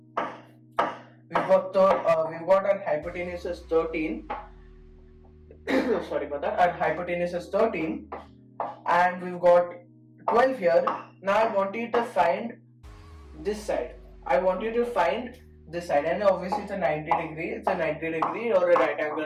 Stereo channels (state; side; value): identical; both; correlation 1.00